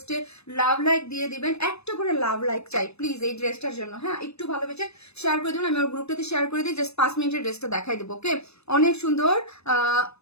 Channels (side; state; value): right; late; 0.79 ms